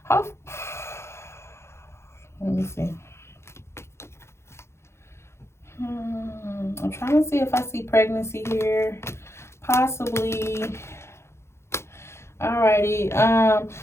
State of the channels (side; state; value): right; late; 0.13 ms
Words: let me see. I'm trying to see if I see pregnancy here. Possibly. Alrighty.